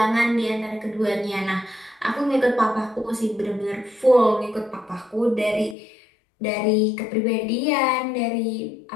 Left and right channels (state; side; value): drops out; right; at 5.8 s